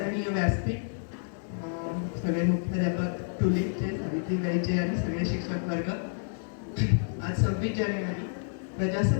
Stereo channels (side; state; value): right; silent; digital silence